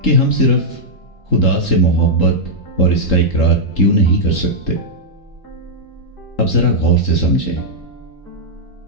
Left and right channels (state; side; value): late; right; 3.8 ms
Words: کہ ہم صرف خدا سے محبت اور اس کا اقرار کیوں نہیں کر سکتے؟ اب ذرا غور سے سمجھیں۔